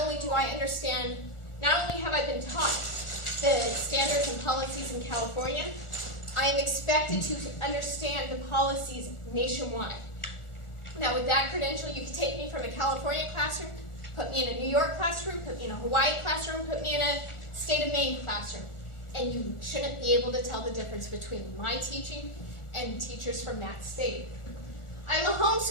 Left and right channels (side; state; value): right; late; 1.4 ms